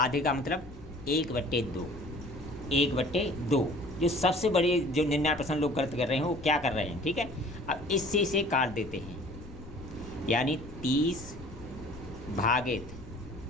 का मतलब 1/2, 1/2। जो सबसे बड़े जो 99% लोग गलत कर रहे हैं वो क्या कर रहे हैं, ठीक है। अब इससे इसे काट देते हैं, यानी 30 भागित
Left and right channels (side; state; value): left; noise; rumble, 15 dB below the sound